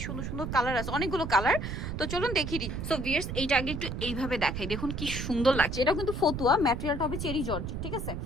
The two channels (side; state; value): right; noise; rumble, 5 dB below the sound